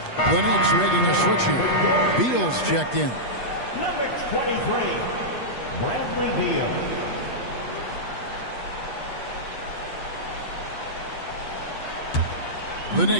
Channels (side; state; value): right; late; 8.2 ms